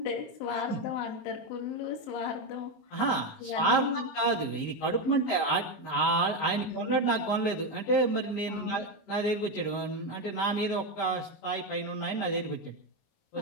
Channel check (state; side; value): late; right; 19 ms